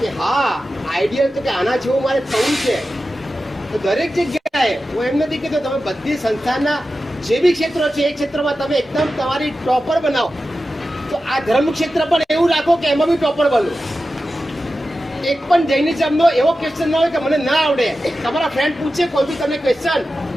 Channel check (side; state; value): both; normal; correlation 0.93